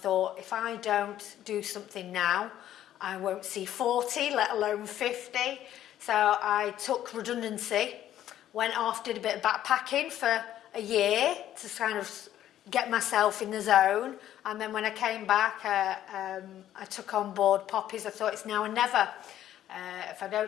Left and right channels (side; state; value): right; quieter; 11.9 dB